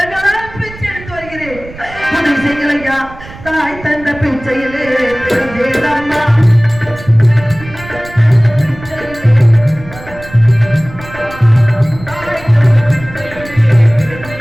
பிச்சை எடுத்து வருகிறேன். உதவி செய்யுங்கள் ஐயா. தாய் தந்த பிச்சையிலே பிறந்தேனம்மா.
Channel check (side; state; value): right; noise; rumble, 16 dB below the sound